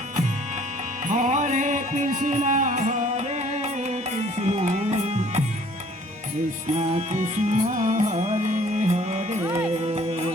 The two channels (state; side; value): normal; both; correlation 0.56